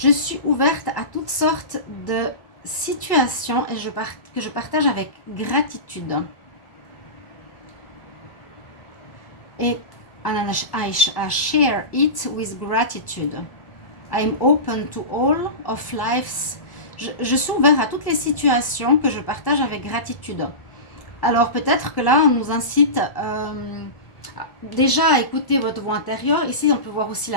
suis ouverte à toutes sortes de situations et que je partage avec gratitude. Et I share it with gratitude. I'm open to all of life's. Je suis ouvert à toutes les situations que je partage avec gratitude. Alors peut-être que là, on nous incite déjà à écouter votre voix intérieure. Ici, on peut voir aussi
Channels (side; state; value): right; late; 1.1 ms